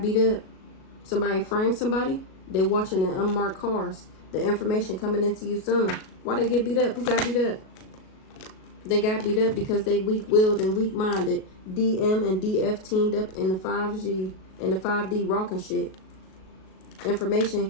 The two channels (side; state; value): right; late; 37 ms